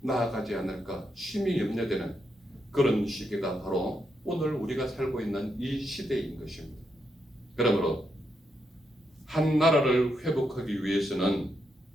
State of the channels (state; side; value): normal; both; correlation 0.82